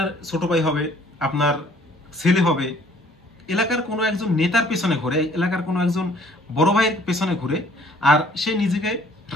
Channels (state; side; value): normal; both; correlation 0.58